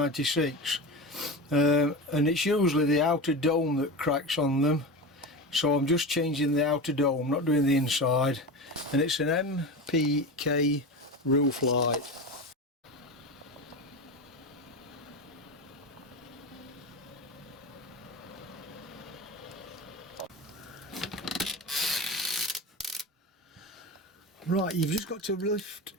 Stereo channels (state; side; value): normal; both; correlation 0.25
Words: and it's usually the outer dome that cracks on them, so I'm just changing the outer dome, not doing the inside, and it's an MPK roof light. Right, you've just got to lift